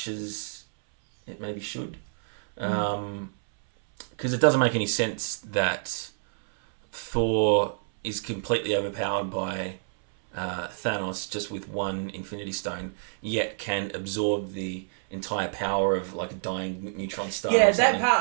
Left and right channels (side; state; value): left; silent; 60 dB below the other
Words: as it maybe should, because it doesn't make any sense that Thor is completely overpowered by Thanos just with one Infinity Stone, yet can absorb the entire power of like a dying neutron star. Yeah, that